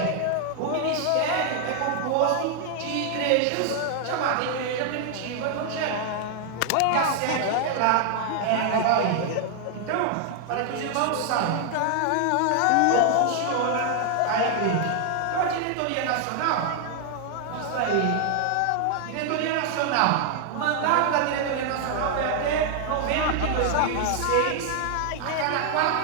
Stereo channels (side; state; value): both; different; correlation 0.00